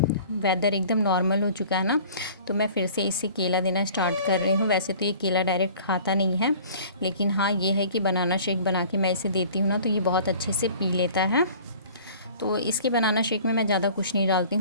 वेदर एकदम नॉर्मल हो चुका है ना, तो मैं फिर से इसे केला देना स्टार्ट कर रही हूँ। वैसे तो ये केला डायरेक्ट खाता नहीं है, लेकिन हाँ ये है कि बनाना शेक बना के मैं इसे देती हूँ ना, तो ये बहुत अच्छे से पी लेता है। तो इसके बनाना शेक में मैं ज़्यादा कुछ नहीं डालती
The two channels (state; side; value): inverted; both; correlation -0.47